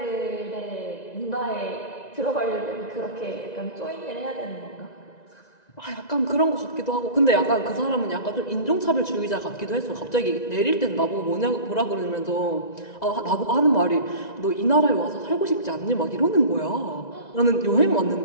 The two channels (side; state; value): right; late; 1.9 ms